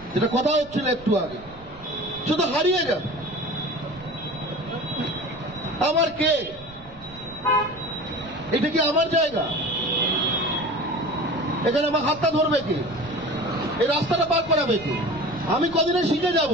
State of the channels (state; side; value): noise; right; rumble, 21 dB below the sound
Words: যেটা কথা হচ্ছিল একটু আগে, শুধু হারিয়ে যাবে। আমার কে? এটা কি আমার জায়গা? এখানে আমার হাতটা ধরবে কে? এই রাস্তাটা পার করাবে কে? আমি কদিনে শিখে যাব?